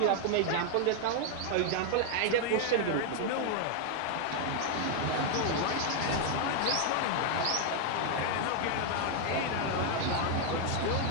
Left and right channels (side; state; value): both; different; correlation 0.00